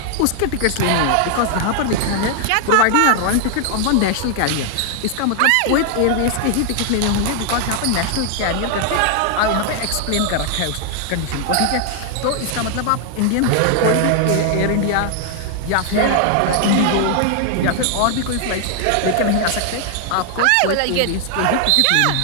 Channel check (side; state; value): both; different; correlation 0.00